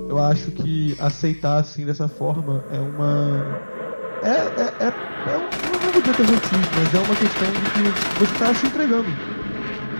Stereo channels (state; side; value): inverted; both; correlation -1.00